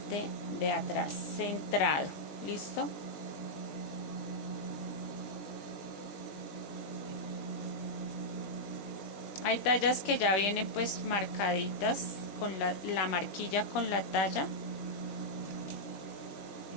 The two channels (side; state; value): right; late; 20 ms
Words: de atrás, centrado. ¿Listo? Hay tallas que ya vienen pues marcaditas con la marquilla con la talla.